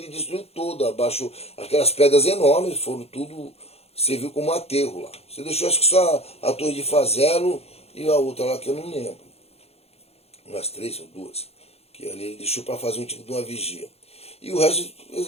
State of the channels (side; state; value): right; late; 0.29 ms